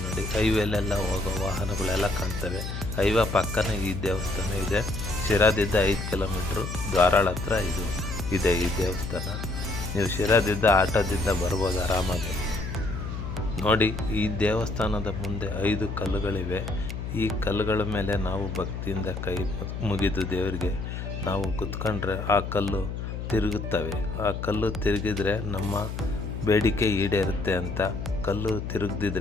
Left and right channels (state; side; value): noise; left; hum, 6 dB below the sound